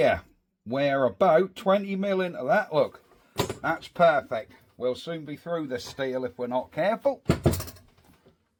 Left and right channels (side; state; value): both; identical; correlation 1.00